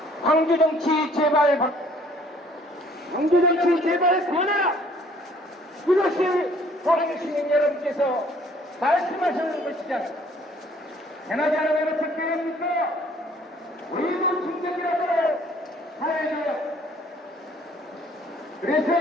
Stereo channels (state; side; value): normal; both; correlation 0.59